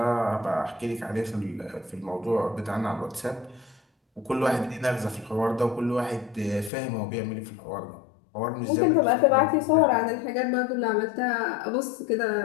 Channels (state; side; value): drops out; right; at 6.7 s